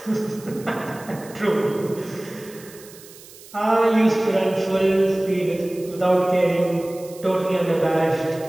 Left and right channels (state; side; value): noise; right; hiss, 20 dB below the sound